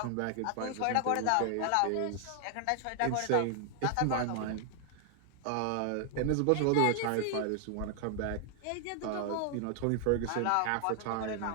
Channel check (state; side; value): different; both; correlation 0.00